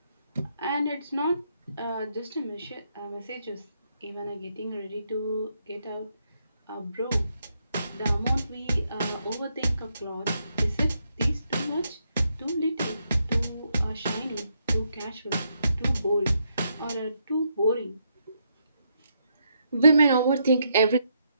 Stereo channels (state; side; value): inverted; both; correlation -0.77